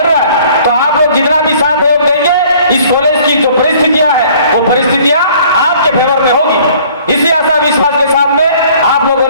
रहा है। तो आप लोग जितना भी साथ सहयोग देंगे, इस कॉलेज की जो परिस्थितियां हैं वो परिस्थितियां आपके फेवर में होगी। इसी आशा विश्वास के साथ में आप लोगों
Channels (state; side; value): inverted; both; correlation -0.55